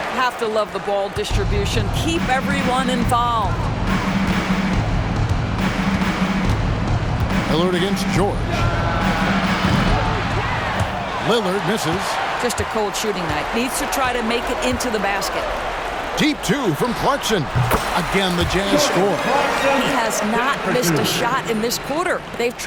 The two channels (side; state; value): both; identical; correlation 1.00